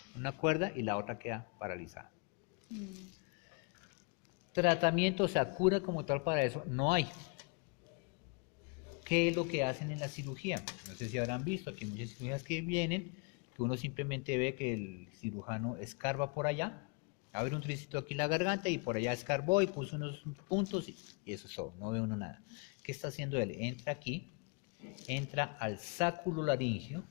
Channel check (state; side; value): quieter; right; 32.8 dB